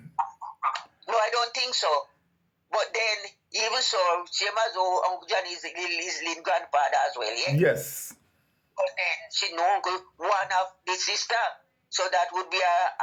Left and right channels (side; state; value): both; identical; correlation 1.00